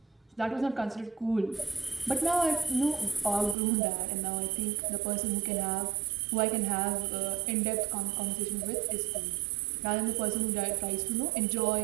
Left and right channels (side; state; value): left; drops out; at 3.6 s